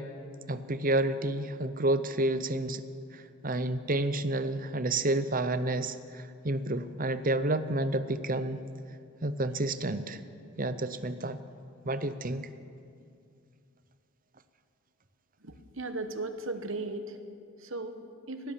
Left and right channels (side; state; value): both; normal; correlation 0.35